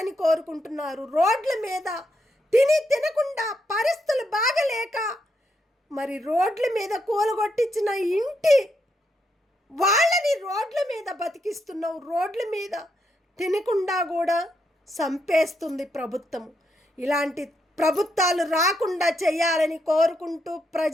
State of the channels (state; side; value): normal; both; correlation 0.80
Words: కోరుకుంటున్నారు. రోడ్ల మీద తినకుండా పరిస్థితులు బాగలేక మరి రోడ్ల మీద కూలగొట్టించిన ఇంటి వాళ్ళని రోడ్ల మీద బతికిస్తున్నావు. రోడ్ల మీద తినకుండా కూడా చంపేస్తుంది ప్రభుత్వం. ఇలాంటి ప్రభుత్వాలు రాకుండా చేయాలని కోరుకుంటూ